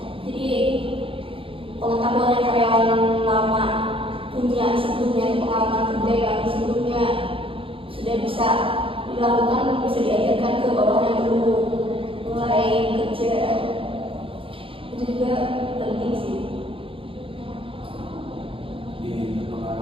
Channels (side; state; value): left; late; 0.26 ms